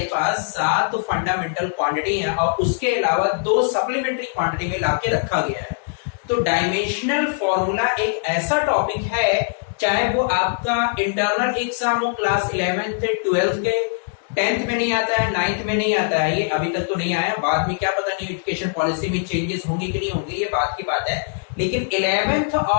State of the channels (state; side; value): silent; right; 64 dB below the other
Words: पास 7 फंडामेंटल क्वांटिटी है और उसके अलावा 2 सप्लीमेंट्री क्वांटिटी में लाके रखा गया है। तो डायमेंशनल फॉर्मूला एक ऐसा टॉपिक है, चाहे वो आपका इंटरनल एग्जाम हो क्लास 11th से 12th के, 10th में नहीं आता है, 9th में नहीं आता है, ये अभी तक तो नहीं आया। बाद में क्या पता नहीं एजुकेशन पॉलिसी में चेंजेस होंगे कि नहीं होंगे, ये बात की बात है। लेकिन 11th